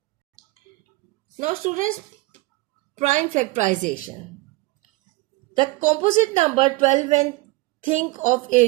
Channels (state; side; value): quieter; left; 21.7 dB